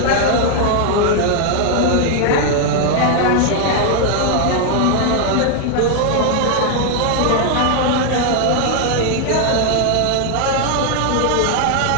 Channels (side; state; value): both; different; correlation 0.00